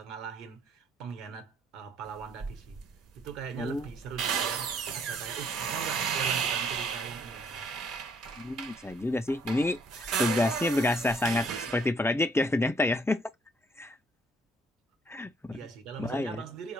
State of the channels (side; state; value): both; normal; correlation 0.65